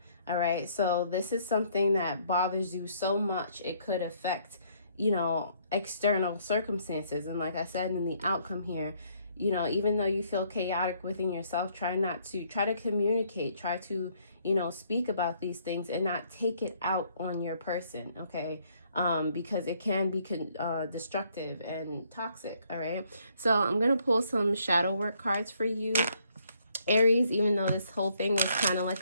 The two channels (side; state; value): both; inverted; correlation -0.67